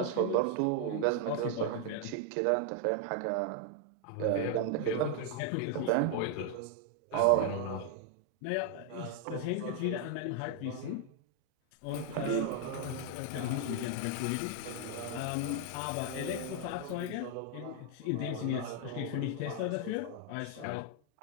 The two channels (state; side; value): different; both; correlation 0.00